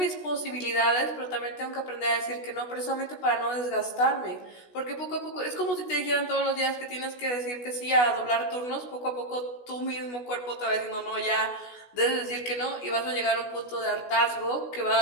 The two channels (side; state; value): right; late; 16 ms